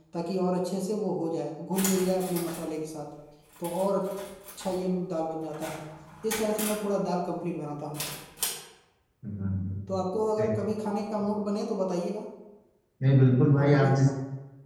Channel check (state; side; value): identical; both; correlation 1.00